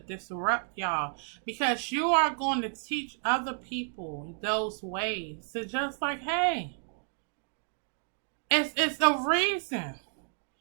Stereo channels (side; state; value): left; silent; 57 dB below the other